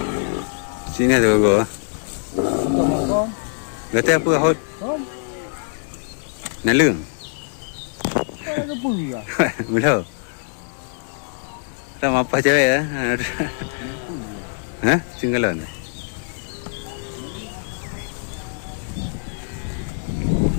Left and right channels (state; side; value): silent; right; digital silence